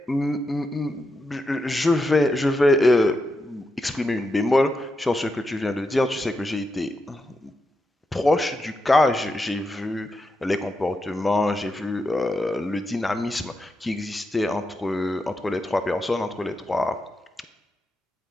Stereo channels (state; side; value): normal; both; correlation 0.86